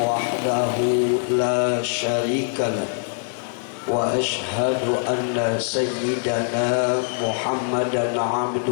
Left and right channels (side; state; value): right; silent; 63 dB below the other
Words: la syarikalah wa ashhadu anna sayyidana Muhammadan